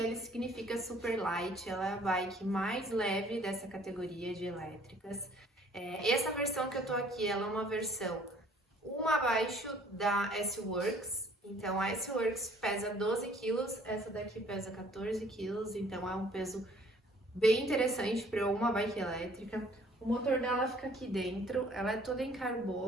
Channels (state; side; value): normal; both; correlation 0.57